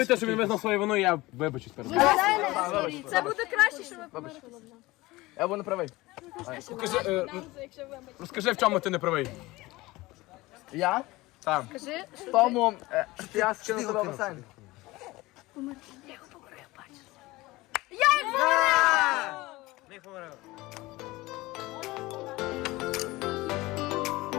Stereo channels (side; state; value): right; quieter; 20.2 dB